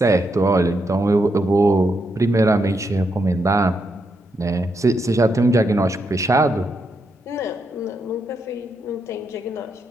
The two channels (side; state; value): both; normal; correlation 0.81